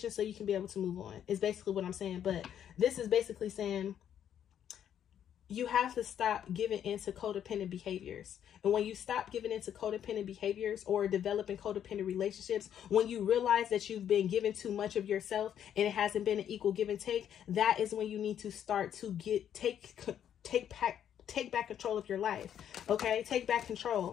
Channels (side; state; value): right; quieter; 9.6 dB